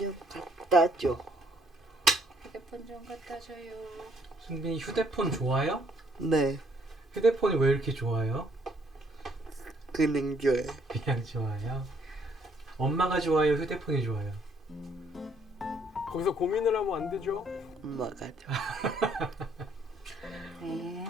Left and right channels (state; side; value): normal; both; correlation 0.66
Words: 갖다 줘. 휴대폰 좀 갖다 줘요. 승빈이 휴대폰 좋아요? 네, 휴대폰이 왜 이렇게 좋아요? 그냥 줘요. 그냥 좋아요. 엄마가 좋아요? 휴대폰이 좋아요? 거기서 고민을 하면 안 되죠? 엄마가 줘. 네.